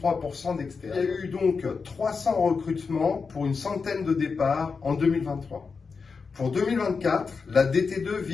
d'externes. Il y a eu donc 300 recrutements pour une centaine de départs en 2023. Pour 2024, la DT2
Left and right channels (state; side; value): quieter; right; 5.0 dB